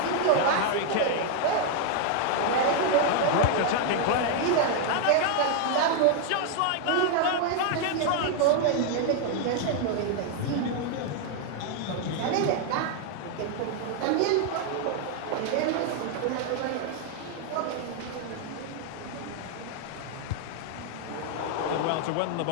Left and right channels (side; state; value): both; different; correlation 0.00